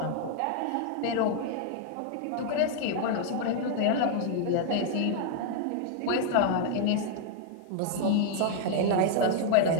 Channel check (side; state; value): both; different; correlation 0.00